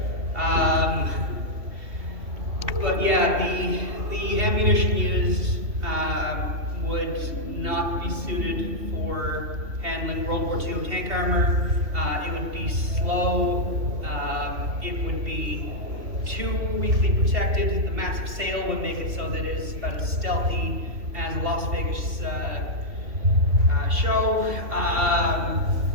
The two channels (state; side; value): late; left; 3.1 ms